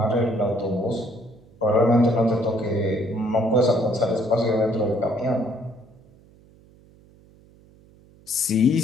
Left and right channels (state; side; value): noise; right; hum, 27 dB below the sound